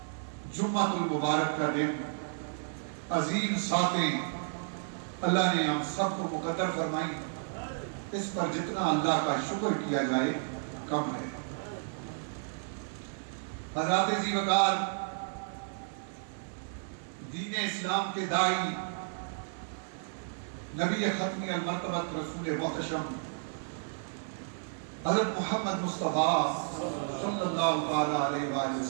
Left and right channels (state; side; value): silent; left; 56 dB below the other